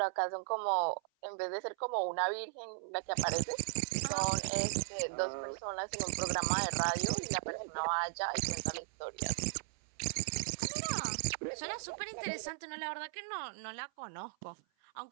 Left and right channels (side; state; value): left; silent; 53 dB below the other